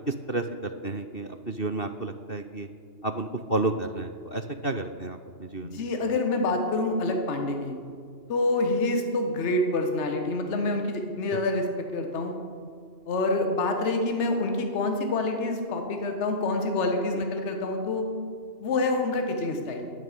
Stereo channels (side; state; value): right; late; 3.3 ms